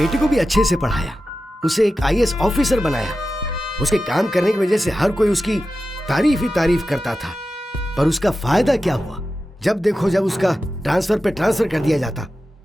को भी अच्छे से पढ़ाया, उसे एक आईएएस ऑफिसर बनाया। उसके काम करने की वजह से हर कोई उसकी तारीफ ही तारीफ करता था, पर उसका फायदा क्या हुआ? जब देखो जब उसका ट्रांसफर पे ट्रांसफर कर दिया जाता।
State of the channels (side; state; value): both; normal; correlation 0.92